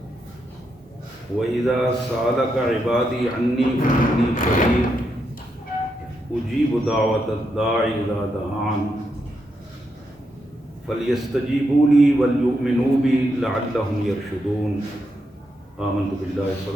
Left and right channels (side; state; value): both; normal; correlation 0.82